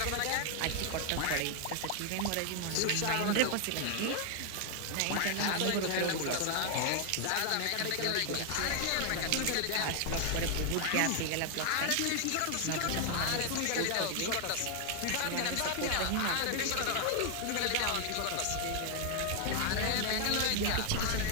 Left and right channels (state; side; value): different; both; correlation 0.00